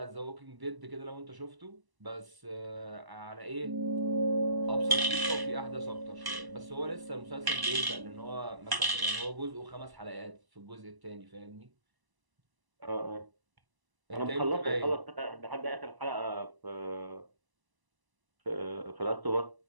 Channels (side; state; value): left; late; 1.0 ms